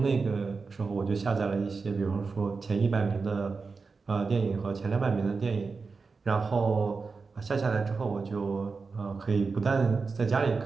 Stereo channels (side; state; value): left; quieter; 4.5 dB